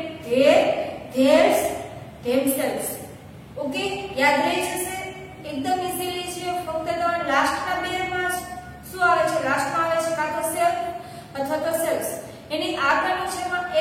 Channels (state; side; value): identical; both; correlation 1.00